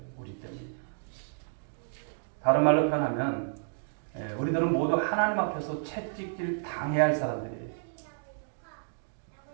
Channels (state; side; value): silent; left; digital silence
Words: 우리 때문입니다. 다른 말로 표현하면 우리들은 모두 하나님 앞에서 채찍질 당해야 할 사람들이에요.